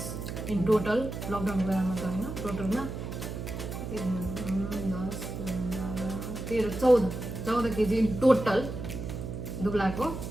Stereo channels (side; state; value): right; noise; hum, 6 dB below the sound